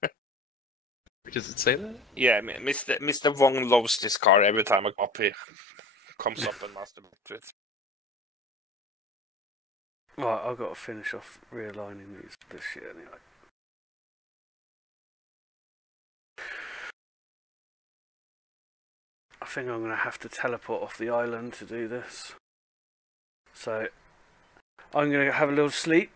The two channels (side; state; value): both; normal; correlation 0.55